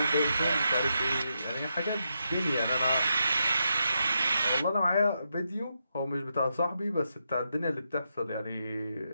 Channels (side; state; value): both; inverted; correlation -0.84